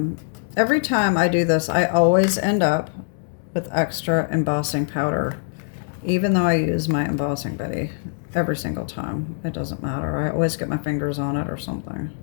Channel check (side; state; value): right; silent; 63 dB below the other